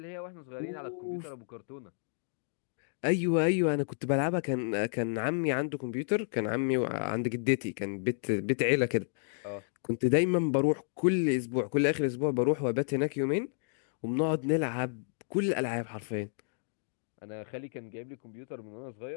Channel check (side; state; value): right; silent; digital silence